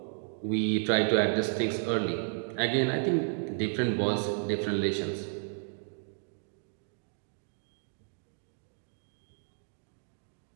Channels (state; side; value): silent; left; digital silence